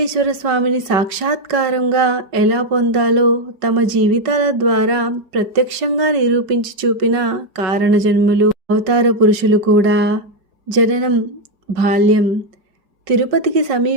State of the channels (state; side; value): late; left; 5.3 ms